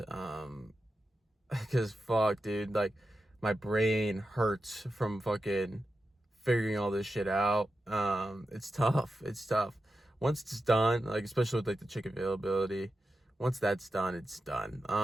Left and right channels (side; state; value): both; normal; correlation 0.90